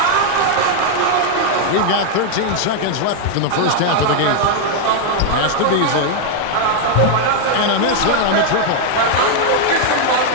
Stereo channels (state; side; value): different; both; correlation 0.00